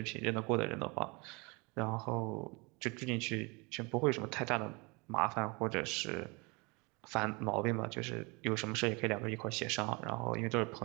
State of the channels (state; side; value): quieter; left; 28.1 dB